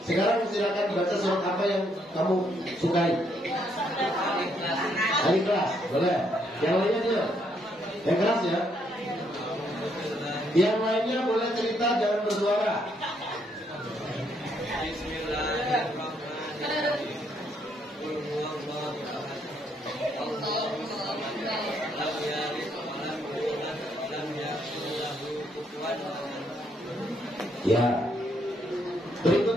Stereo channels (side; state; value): both; normal; correlation 0.73